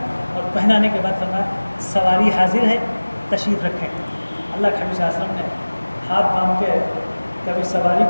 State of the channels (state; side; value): inverted; both; correlation -1.00